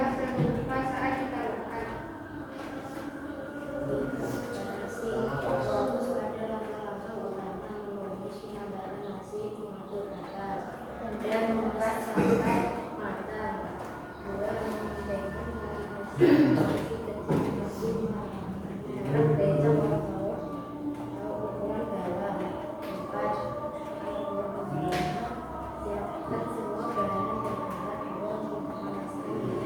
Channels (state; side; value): identical; both; correlation 1.00